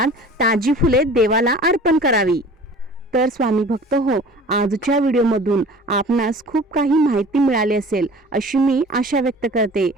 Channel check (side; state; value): both; normal; correlation 0.44